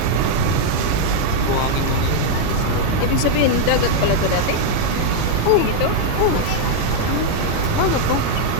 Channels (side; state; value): both; different; correlation -0.01